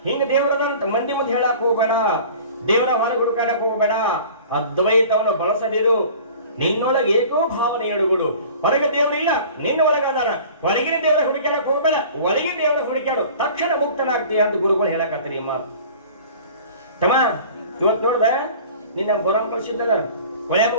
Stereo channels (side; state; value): both; inverted; correlation -0.44